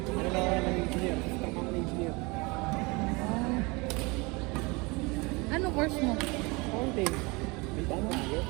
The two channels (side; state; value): left; quieter; 26.3 dB